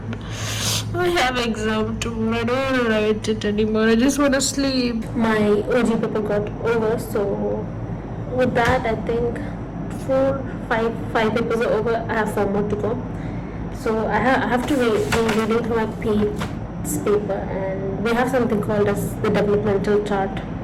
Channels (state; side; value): identical; both; correlation 1.00